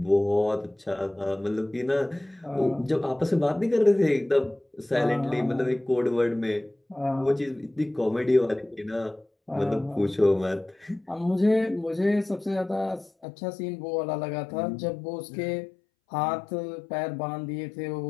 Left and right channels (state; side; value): drops out; right; at 13.2 s